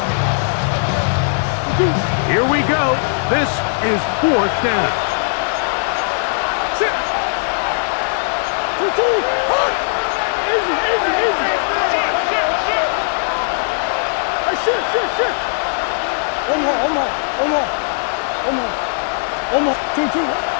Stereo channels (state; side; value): silent; right; digital silence